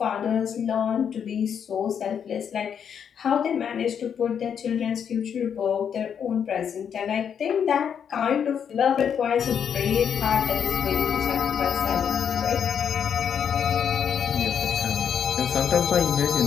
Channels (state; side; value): quieter; right; 7.8 dB